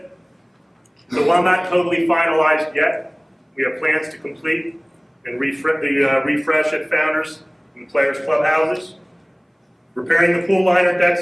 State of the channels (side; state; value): both; identical; correlation 1.00